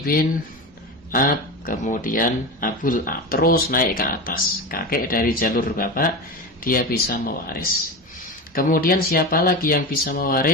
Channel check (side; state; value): both; normal; correlation 0.24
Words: ab, kemudian abul ab, terus naik ke atas. Kakek dari jalur bapak dia bisa mewaris. Kemudian siapa lagi yang bisa